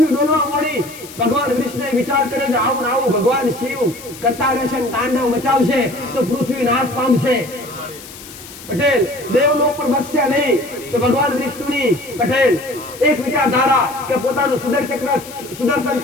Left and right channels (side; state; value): left; noise; hiss, 16 dB below the sound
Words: ડોલવા મોડી. ભગવાન વિષ્ણુએ વિચાર કર્યો છે આવું આવું ભગવાન શિવ કરતા રહેશે, તાંડવ મચાવશે તો પૃથ્વી નાશ પામશે પટેલ. દેવલોક પર બસશે નહીં. તો ભગવાન વિષ્ણુની પટેલ એક વિચારધારા કે પોતાનું સુદર્શન